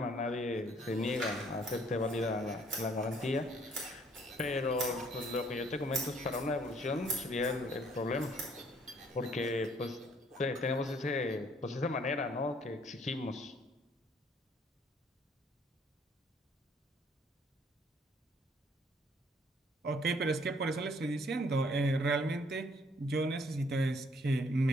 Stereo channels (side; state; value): both; normal; correlation 0.63